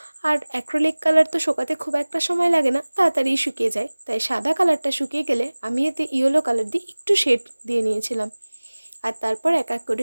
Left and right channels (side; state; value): both; inverted; correlation -1.00